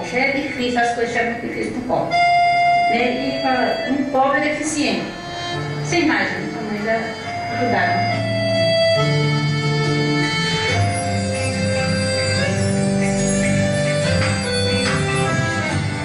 já é difícil, as coisas já é muito difíceis para o pobre. E para um pobre deficiente. Você imagina como eles ajudaram.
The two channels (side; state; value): both; identical; correlation 1.00